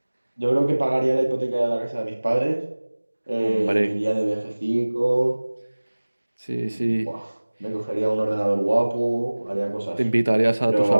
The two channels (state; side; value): inverted; both; correlation -1.00